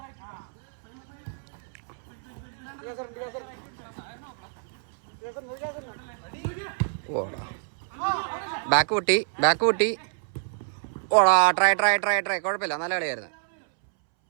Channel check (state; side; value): silent; left; 60 dB below the other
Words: ഓടാ ബാക്ക് പൊട്ടി. ഓടാ ട്രൈ. കുഴപ്പമില്ല, നല്ല കളിയായിരുന്നു.